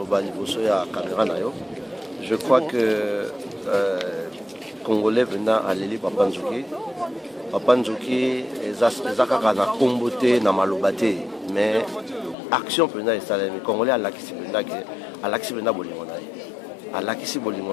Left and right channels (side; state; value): right; drops out; at 12.4 s